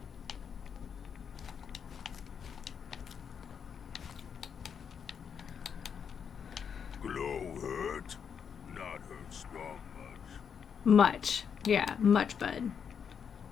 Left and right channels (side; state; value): right; quieter; 7.2 dB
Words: Glow hurt? Not hurt strong much. Much. Yeah, much, bud.